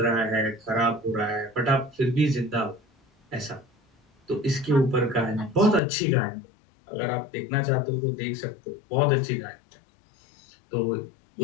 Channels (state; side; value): drops out; right; at 5.8 s